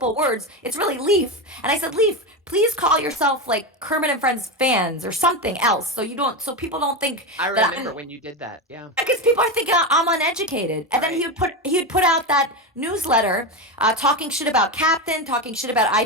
words. It's really Leaf. And I said, Leaf, please call yourself like Kermit and Friends fans or something else, so people don't think I that remember I'm, when you did that. Yeah. because people are thinking I'm uneducated. And then Right. he would put out that newsletter, talking shit about Captain, talking shit about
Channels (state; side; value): normal; both; correlation 0.15